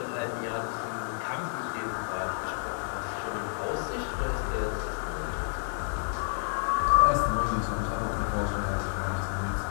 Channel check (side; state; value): right; silent; 58 dB below the other